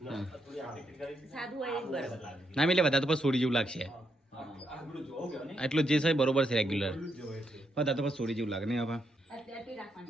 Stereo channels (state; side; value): normal; both; correlation 0.79